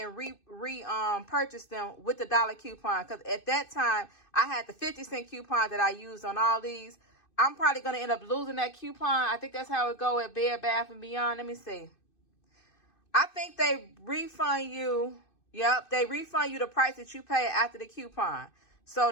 purchase them with the $1 coupon. Because at that time, I had the 50-cent coupon that I used on all these. I'm probably going to end up losing that coupon. I think that's how it go at Bed Bath & Beyond. Let me see. I think they refund you. Yep, they refund you the price that you pay after the coupon.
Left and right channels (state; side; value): late; right; 2.6 ms